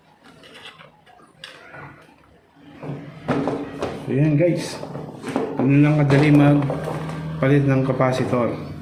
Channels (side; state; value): both; identical; correlation 1.00